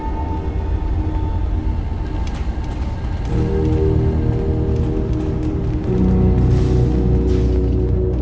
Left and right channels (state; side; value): identical; both; correlation 1.00